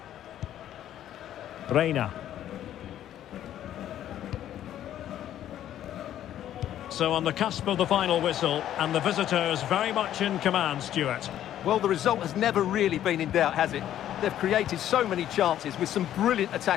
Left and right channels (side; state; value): right; quieter; 11.5 dB